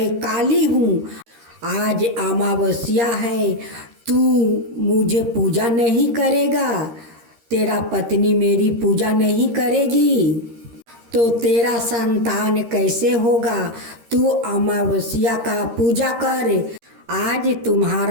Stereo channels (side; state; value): left; late; 13 ms